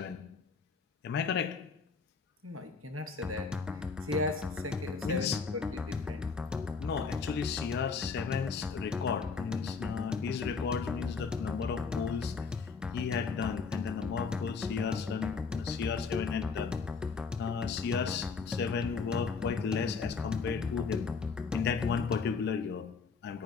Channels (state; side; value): quieter; right; 5.0 dB